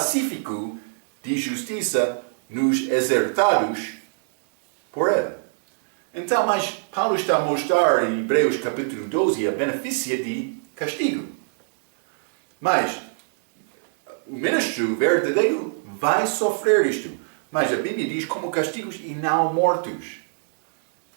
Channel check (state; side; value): silent; left; 63 dB below the other